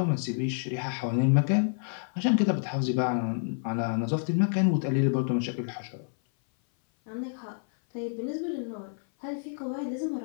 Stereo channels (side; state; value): right; silent; 57 dB below the other